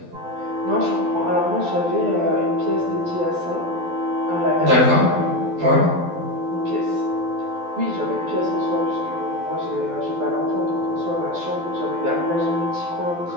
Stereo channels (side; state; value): left; late; 12 ms